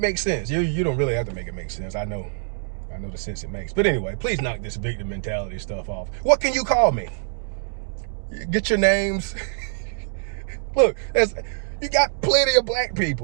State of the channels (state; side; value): silent; left; digital silence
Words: sense. You don't really have to make it make sense. I know the sense it makes. But anyway, please knock this victim mentality stuff off. What can you call me? Get your names. Look, you got plenty of black